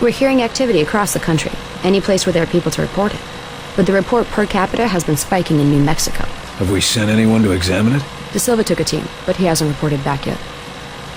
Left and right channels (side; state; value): both; identical; correlation 1.00